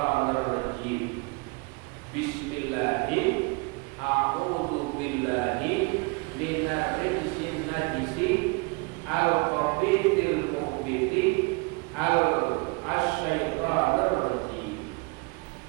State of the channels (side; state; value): left; quieter; 29.8 dB